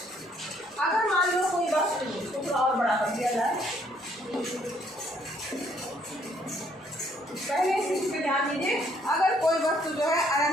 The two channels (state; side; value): normal; both; correlation 0.66